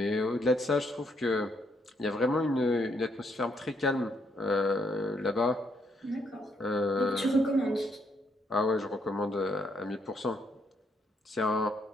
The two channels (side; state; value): both; normal; correlation 0.74